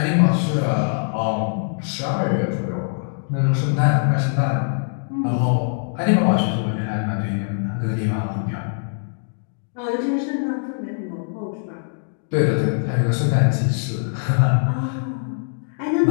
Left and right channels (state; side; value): silent; right; digital silence